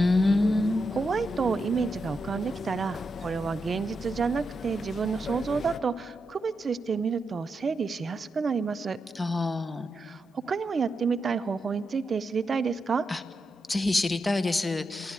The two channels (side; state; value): both; normal; correlation 0.85